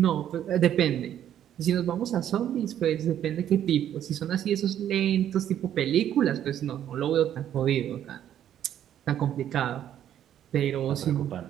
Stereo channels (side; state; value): left; quieter; 10.6 dB